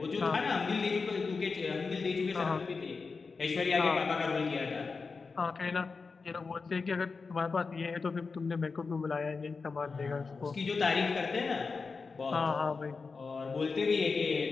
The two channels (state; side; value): quieter; right; 4.6 dB